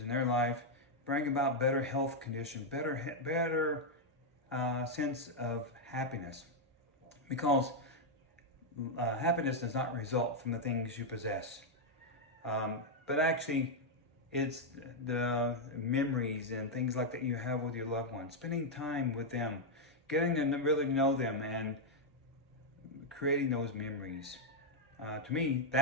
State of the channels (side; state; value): both; normal; correlation -0.01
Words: in their life, bring about better health condition, better sense of happiness. Because happiness does not result from the things you possess. But actually, it's the memories and things like that you have with your loved ones, spending time with them, getting to really know them and creating those memories. To me,